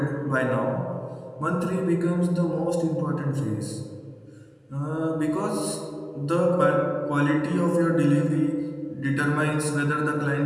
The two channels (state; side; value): identical; both; correlation 1.00